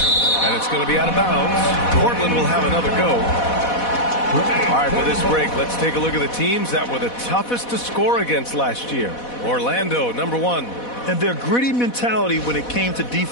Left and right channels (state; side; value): late; right; 4.1 ms